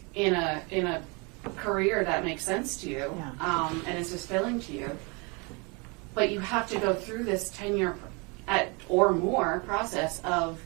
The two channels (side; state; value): left; quieter; 30.5 dB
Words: in a career that makes sense to you, and is fulfilling to you. But you have to go through this 10-year or more process of